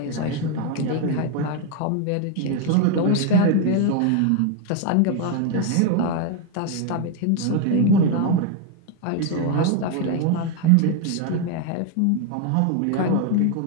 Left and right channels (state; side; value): different; both; correlation 0.01